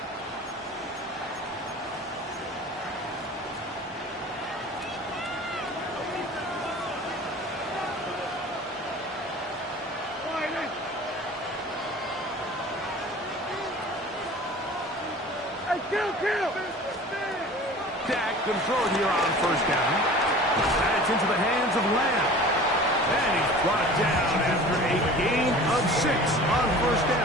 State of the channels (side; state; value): both; normal; correlation 0.42